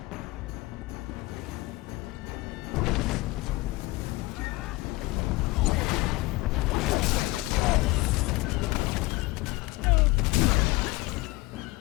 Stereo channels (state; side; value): quieter; right; 21.2 dB